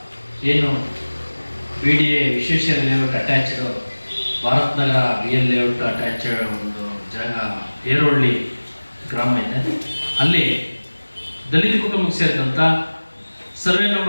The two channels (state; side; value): inverted; both; correlation -1.00